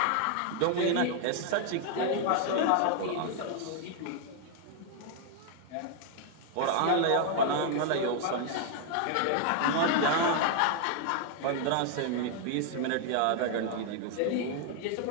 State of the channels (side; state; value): both; different; correlation 0.00